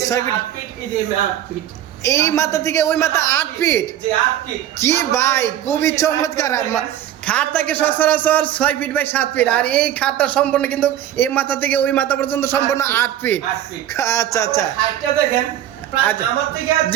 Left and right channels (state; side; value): quieter; left; 11.7 dB